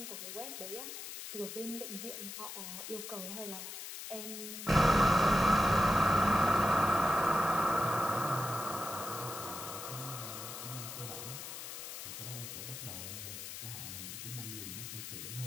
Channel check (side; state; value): left; noise; hiss, 9 dB below the sound